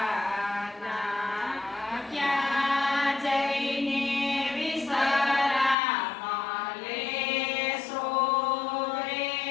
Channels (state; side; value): drops out; right; at 5.8 s